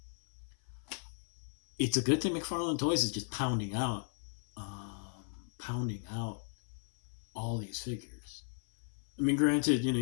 it's a good thing Mcfarlane Toys is just pounding out all these figures. I mean, granted,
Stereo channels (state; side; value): silent; right; 54 dB below the other